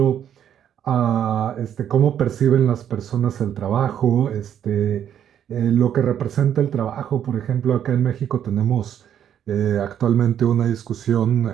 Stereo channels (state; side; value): quieter; left; 9.7 dB